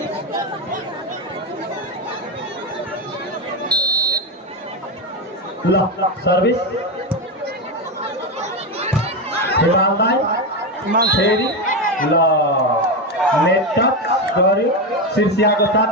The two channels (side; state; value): both; normal; correlation 0.12